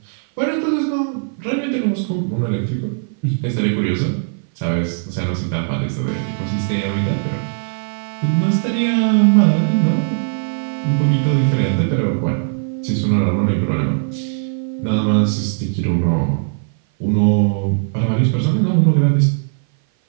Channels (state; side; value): silent; left; 57 dB below the other